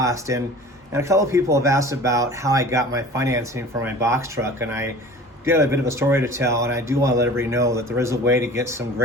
And a couple of people have asked about how I got my financing for my box truck, and I did a bit of a story to tell, and I do want to let everybody know that there is a way to get some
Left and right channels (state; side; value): normal; both; correlation 0.42